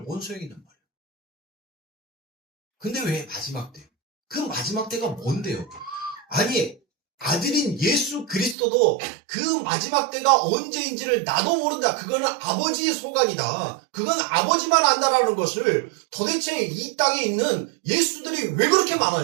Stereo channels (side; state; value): left; drops out; at 8.6 s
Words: 뭔 소용이냔 말이에요. 근데 왜 마지막 때? 그 마지막 때가 뭔데요? 아니 아들인 예수 그리스도도 그 마지막 때가 언제인지를 나도 모른다. 그거는 아버지의 소관이다. 그건 아버지만 안다라는 것을 도대체 이 땅에 있는 예수들이 왜 그렇게